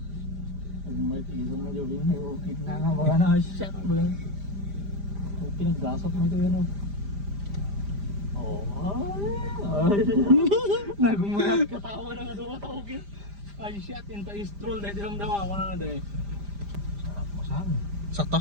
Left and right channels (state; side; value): late; left; 5.0 ms